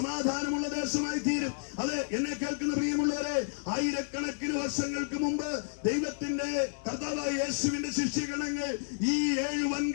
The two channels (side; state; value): right; silent; digital silence